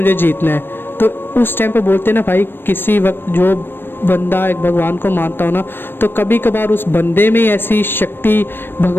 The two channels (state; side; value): late; right; 0.099 ms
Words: जीतना है। तो उस टाइम पर बोलते हैं ना भाई, किसी वक्त जो बंदा एक भगवान को मानता हो ना, तो कभी कभार उस बंदे में ऐसी शक्ति